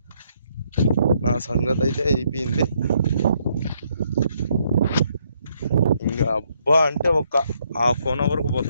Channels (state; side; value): inverted; both; correlation -0.72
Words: నా సంగతి అయితే అయిపోయింది. ఇంకా అబ్బా అంటే ఒక 1/2 అవర్కు